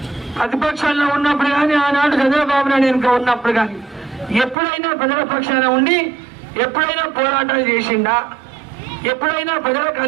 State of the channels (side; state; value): left; drops out; at 4.5 s